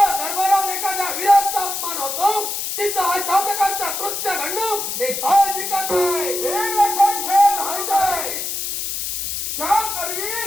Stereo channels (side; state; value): left; noise; hiss, 3 dB below the sound